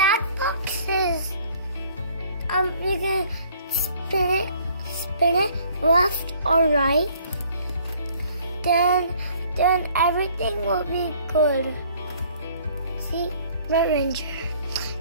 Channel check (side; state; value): both; inverted; correlation -0.58